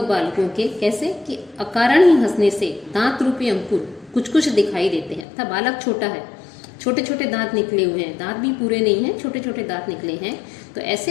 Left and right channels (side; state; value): right; drops out; at 5.2 s